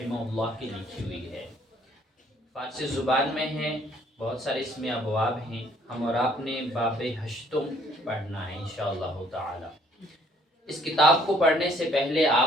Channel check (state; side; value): normal; both; correlation 0.62